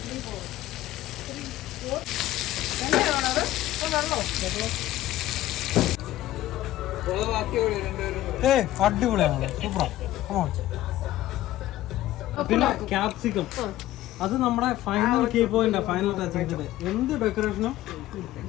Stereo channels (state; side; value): quieter; right; 14.8 dB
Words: അടിപൊളിയാണ്, സൂപ്പറാ. പിന്നെ ക്യാപ്സിക്കം, അത് നമ്മുടെ final key point, final touching. എന്ത് ഡെക്കറേഷനും